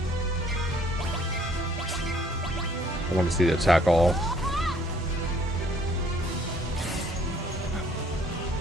want to see the attack all.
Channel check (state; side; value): normal; both; correlation 0.61